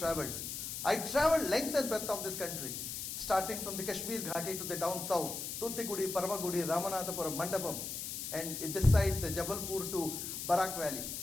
I traveled length and breadth of this country, starting from the Kashmir Ghati to the down south, Tuticorin, Paramagudi, Ramanathapuram, Mandapam, and this side, the Jabalpur to Barak Valley.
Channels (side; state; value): left; noise; hiss, 5 dB below the sound